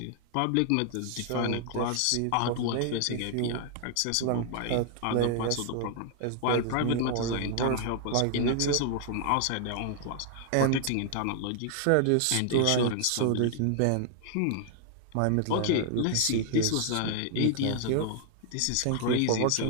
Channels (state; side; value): different; both; correlation 0.00